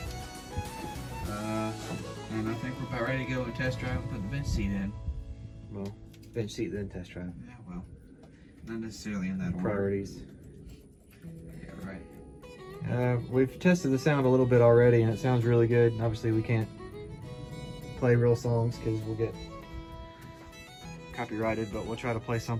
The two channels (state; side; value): identical; both; correlation 1.00